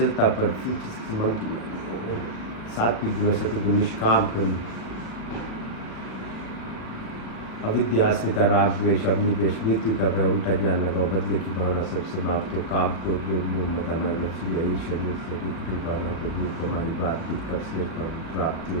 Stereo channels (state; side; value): late; right; 37 ms